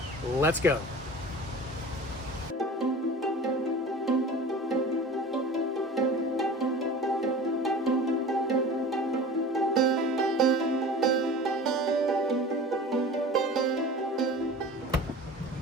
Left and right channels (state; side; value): normal; both; correlation 0.38